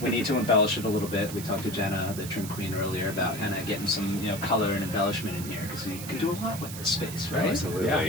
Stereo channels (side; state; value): right; noise; hiss, 11 dB below the sound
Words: We need to embellish it a little bit. We talked to Jenna, the trim queen, earlier about kind of getting some, color and embellishment in here because you can do a lot with this space, right?